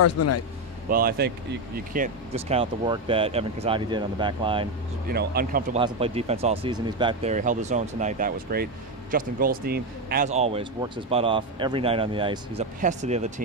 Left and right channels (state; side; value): normal; both; correlation 0.10